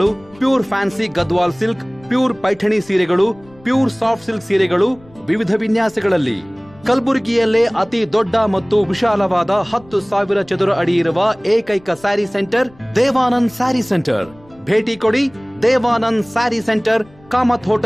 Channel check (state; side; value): noise; left; rumble, 27 dB below the sound